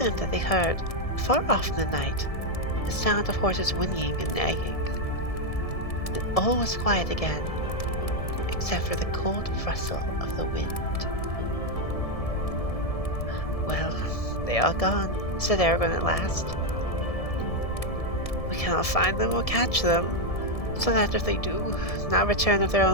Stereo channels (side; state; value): right; late; 1.7 ms